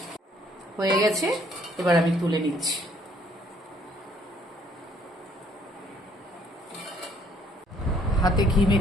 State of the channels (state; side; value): normal; both; correlation 0.63